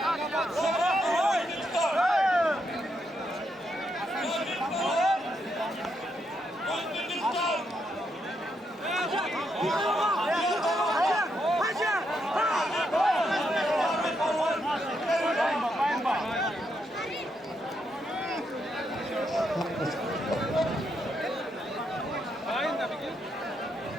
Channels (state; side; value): normal; both; correlation 0.80